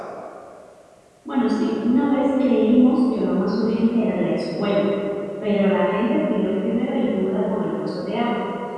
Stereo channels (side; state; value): both; identical; correlation 1.00